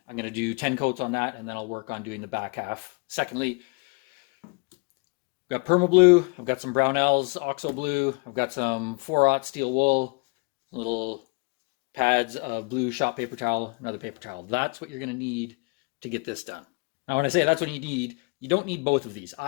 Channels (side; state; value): right; quieter; 30.0 dB